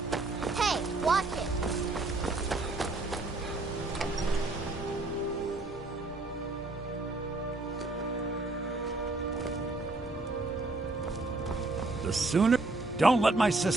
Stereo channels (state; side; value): quieter; left; 3.0 dB